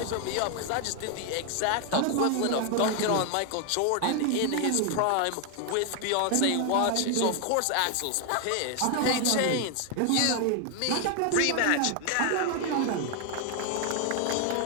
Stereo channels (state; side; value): different; both; correlation 0.01